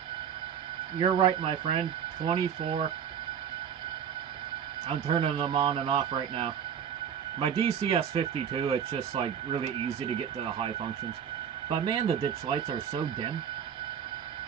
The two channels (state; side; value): quieter; left; 8.3 dB